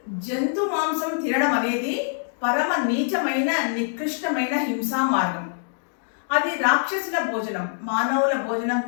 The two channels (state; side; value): silent; right; digital silence